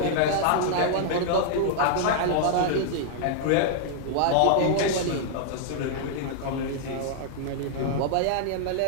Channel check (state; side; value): different; both; correlation -0.01